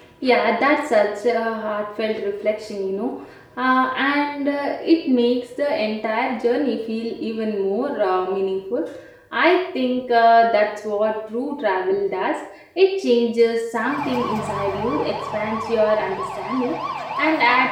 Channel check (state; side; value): identical; both; correlation 1.00